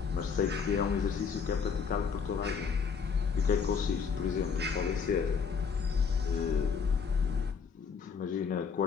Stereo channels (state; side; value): quieter; right; 5.9 dB